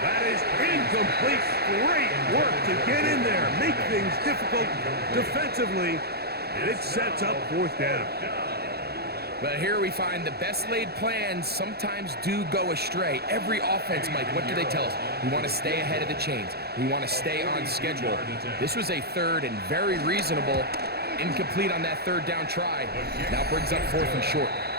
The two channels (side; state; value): left; late; 0.46 ms